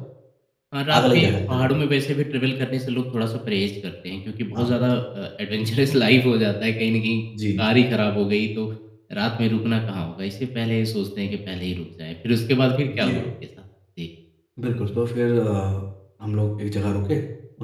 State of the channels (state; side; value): identical; both; correlation 1.00